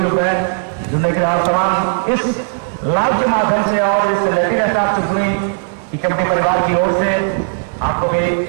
पर जुड़ने के आप तमाम इस लाइव के माध्यम से और इस लेटिन स्टाफ चुटनी की कबड्डी परिवार की ओर से आपको भी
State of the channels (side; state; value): left; silent; digital silence